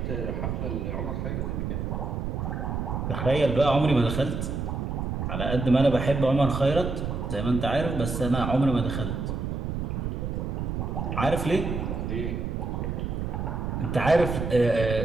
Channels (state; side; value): noise; right; rumble, 2 dB below the sound